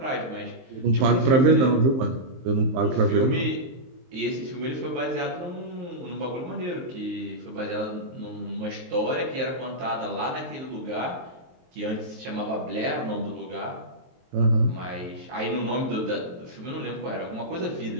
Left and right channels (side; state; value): left; late; 23 ms